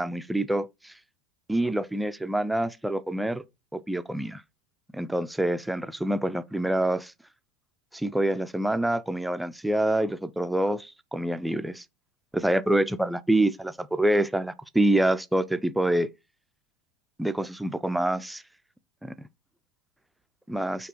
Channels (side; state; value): both; normal; correlation 0.91